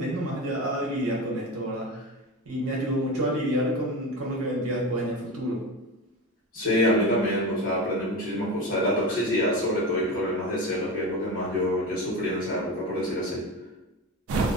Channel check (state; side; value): normal; both; correlation 0.24